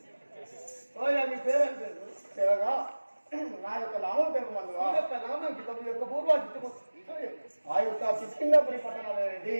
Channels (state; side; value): inverted; both; correlation -1.00